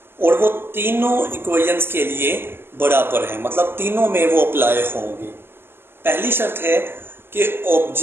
और वो तीनों इक्वेशंस के लिए बराबर हैं, मतलब तीनों में वो अप्लाई होंगी। पहली शर्त है कि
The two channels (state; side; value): late; left; 0.11 ms